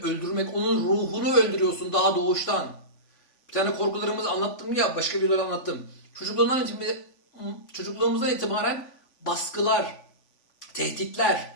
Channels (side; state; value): right; late; 3.5 ms